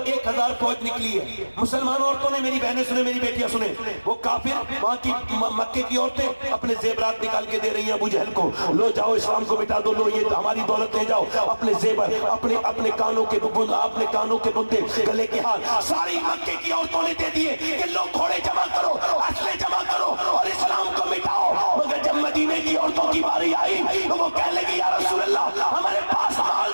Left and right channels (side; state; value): both; inverted; correlation -1.00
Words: 1000 فوج نکلی ہے. مسلمان عورتوں نے، میری بہنیں سنیں، میری بیٹیاں سنیں، وہ کافر وہاں کی مکے کی عورتیں اپنے زیورات نکال کے دے رہی ہیں ابو جہل کو، لو جاؤ اسلام کو مٹا دو، لو یہ ہماری دولت لے جاؤ، اپنے زیور، اپنے کانوں کے بندے، گلے کے ہار ساری مکے کی عورتوں نے دے دیے کہ لو گھوڑے جمع کرو، اسلحے جمع کرو اور اسلام کو مٹاؤ. مگر جب مدینے کی عورتوں کی باری آئی تو وہ کہنے لگی یا رسول اللہ ہمارے پاس مال